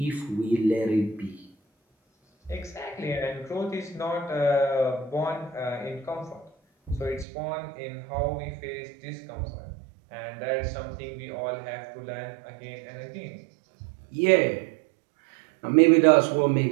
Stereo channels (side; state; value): left; drops out; at 7.2 s